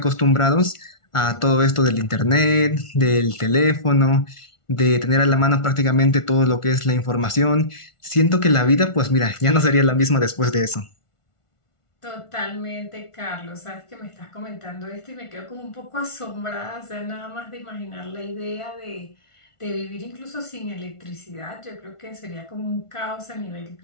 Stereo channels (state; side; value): late; right; 1.4 ms